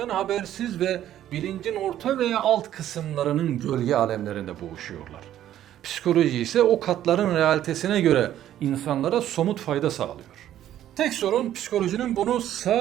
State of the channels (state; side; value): quieter; left; 11.9 dB